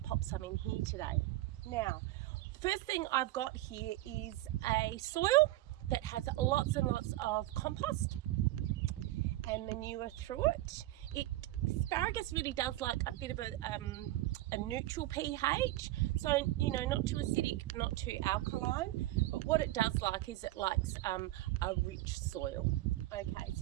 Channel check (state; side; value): quieter; left; 16.7 dB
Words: pop some in here today. Now, the first thing I've got here is a soil that has lots and lots of compost and manure through it. Asparagus really does like a bit of a neutral pH, so not too acidic, not too alkaline, but what it does like is it likes a rich soil. Okay,